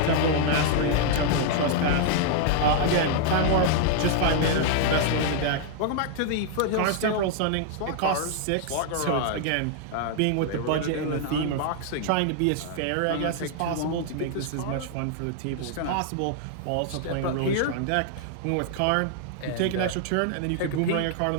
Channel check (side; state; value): both; different; correlation -0.01